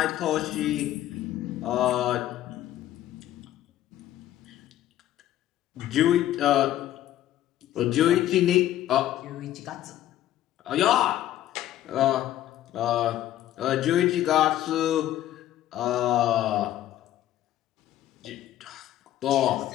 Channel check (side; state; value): right; quieter; 13.0 dB